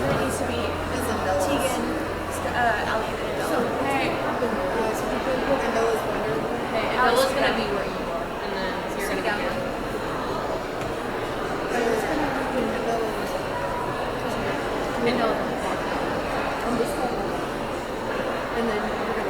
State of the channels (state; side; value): identical; both; correlation 1.00